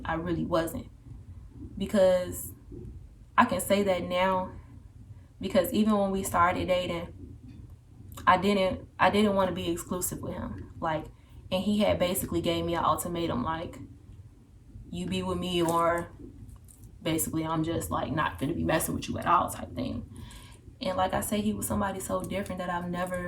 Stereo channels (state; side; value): identical; both; correlation 1.00